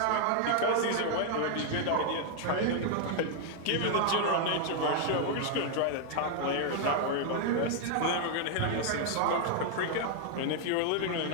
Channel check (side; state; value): both; different; correlation 0.00